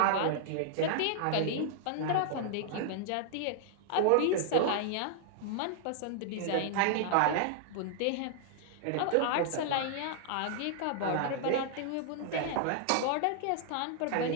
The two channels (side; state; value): both; different; correlation -0.01